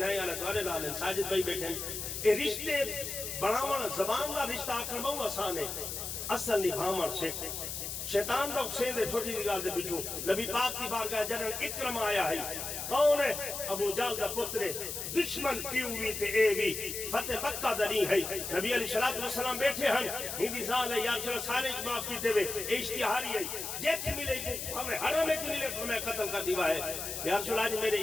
آلہ دوارے لال ہیں ساجد بھائی بیٹھے ہیں اے رشتے بڑھاونا زبان کا رشتہ آکھر بہو آسان ہے اصل نبھامر سکھ شیطان دا حسین دے چھوٹی نگال دے بچوں نبی پاک کی بارگاہ جنرل اکرم آیا ہے کون ہے ابو جال دا پترے دشمن کیوں ہوئی تے اے بھی فتح مکہ دنی ہے نبی علیہ السلام بیٹھے ہیں ہندی زال ہے یا چلو سارے معاف کیتے ہوئے اشتہاری ہے جیت ملے کو ہمیں حرم ایک ملے کو میں قتل کر دیوا ہے یا رسول اللہ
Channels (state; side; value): noise; left; hiss, 5 dB below the sound